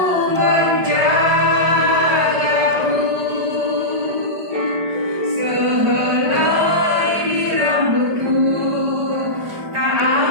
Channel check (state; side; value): late; left; 5.0 ms